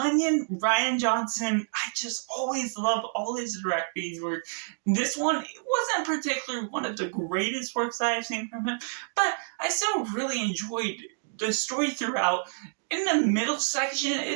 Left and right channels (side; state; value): left; silent; digital silence